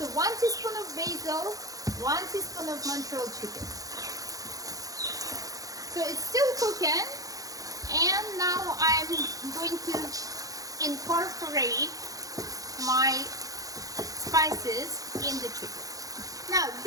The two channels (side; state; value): left; late; 0.17 ms